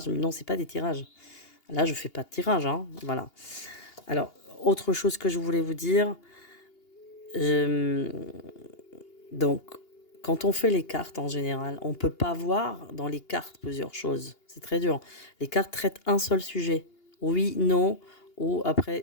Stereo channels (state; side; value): late; right; 2.8 ms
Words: mais non, c'est pas des tirages. Là, je fais pas de tirage, hein. Voilà. Alors, autre chose que je voulais vous dire, euh, donc quand on fait les cartes en général, on peut pas voir dans les cartes plusieurs choses. C'est très dur. Les cartes traitent un seul sujet. Oui, non, ou après,